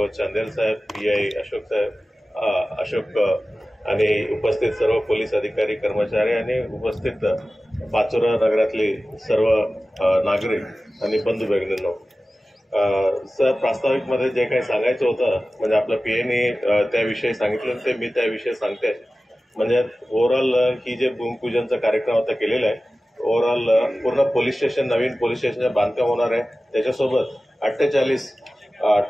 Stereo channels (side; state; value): both; normal; correlation 0.96